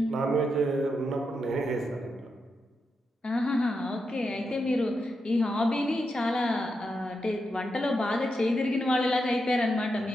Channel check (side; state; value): both; normal; correlation 0.85